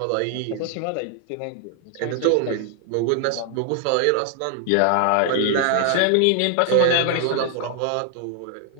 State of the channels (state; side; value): different; both; correlation 0.00